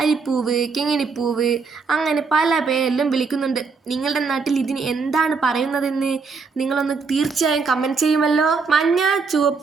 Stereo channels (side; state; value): left; quieter; 4.7 dB